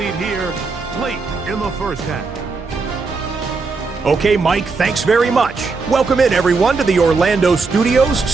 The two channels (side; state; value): left; quieter; 4.3 dB